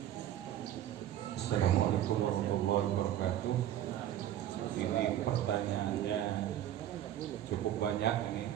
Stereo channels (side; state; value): left; quieter; 11.8 dB